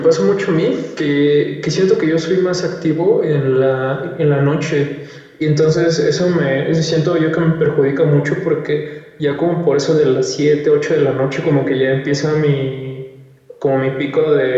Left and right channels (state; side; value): identical; both; correlation 1.00